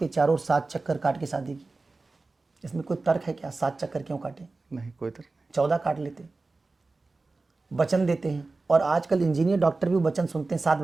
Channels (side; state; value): left; quieter; 3.5 dB